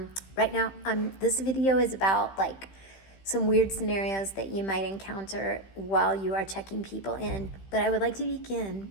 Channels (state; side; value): late; right; 15 ms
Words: now, this video is about some weird scenarios that you might encounter while you are checking people in. But I would like to